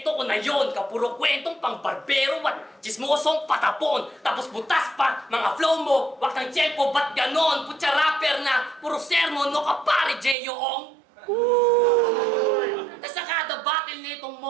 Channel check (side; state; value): left; drops out; at 10.4 s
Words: ko na yon, kapuro kwentong pang barbero at chismosong patapon. Tapos butas pa, mga flow mo, wag ng tiyempo, ba't ganon? Putya rapper na, puro sermon, no kapare, J.O.ong. Tapos sa kada battle nitong